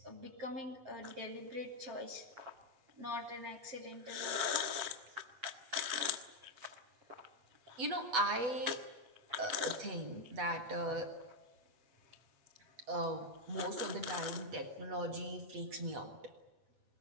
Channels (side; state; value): left; late; 8.1 ms